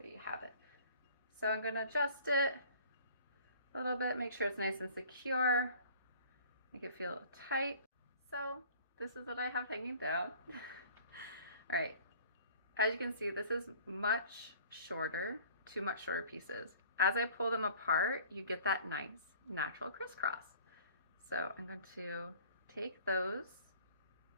you have it. So I'm going to adjust it a little bit, make sure it's nice and secure, make it feel tight. So this is what I have hanging down. All right, As you can see, this is much shorter, two much shorter pieces. As I pull them apart, you get that nice natural crisscross. So I'm going to take those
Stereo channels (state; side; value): inverted; both; correlation -0.50